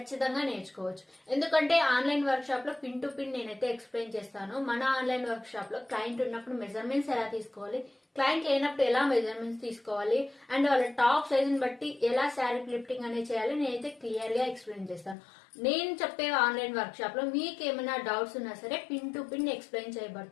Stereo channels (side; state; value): right; drops out; at 15.2 s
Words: నేర్చుకోవచ్చు. ఎందుకంటే ఆన్లైన్ వర్క్ షాప్ లో పిన్ టు పిన్ నేనైతే ఎక్స్ప్లెయిన్ చేస్తాను. మన ఆన్లైన్ వర్క్ షాప్ లో క్లయింట్ ఉన్నప్పుడు మెజర్మెంట్స్ ఎలా తీసుకోవాలి, క్లయింట్ లేనప్పుడు ఎలా మెజర్మెంట్స్ తీసుకోవాలి, అండ్ వాళ్ళ టాప్ సైజ్ ని బట్టి ఎలా శారీ ఫ్లిప్పింగ్ అనేది చేయాలి నేనైతే క్లియర్ గా ఎక్స్ప్లెయిన్ చేస్తాను. నేను చెప్పే ఆన్లైన్ వర్క్ షాప్ లో మీకు ఏమైనా డౌట్స్ ఉన్నా సరే పిన్ టు పిన్ ఎక్స్ప్లెయిన్